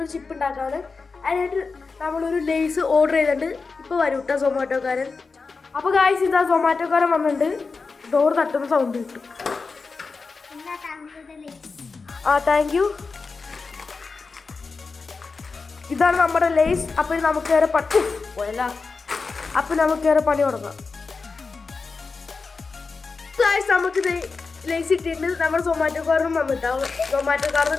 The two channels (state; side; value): quieter; right; 4.4 dB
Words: ചിപ്പ് ഉണ്ടാക്കാണ്. അതിനായിട്ട് നമ്മളൊരു ലേസ് ഓർഡർ ചെയ്തിട്ടുണ്ട്. ഇപ്പോൾ വരും കേട്ടോ സൊമാറ്റോക്കാരൻ. അപ്പോൾ ഗായ്സ്, ഇതാ സൊമാറ്റോക്കാരൻ വന്നിട്ടുണ്ട്. ഡോർ തട്ടുന്ന സൗണ്ട് കിട്ടും. Thank you. ഇതാണ് നമ്മുടെ ലേസ്. അപ്പോൾ നമുക്ക് വേറെ പോയല്ല. അപ്പോൾ നമുക്ക് വേറെ പണി തുടങ്ങാം. നമുക്ക് ലേസ് ഇട്ടിട്ട് നമ്മൾ സൊമാറ്റോക്കാരനും വന്നിട്ടാവും. സൊമാറ്റോക്കാരനും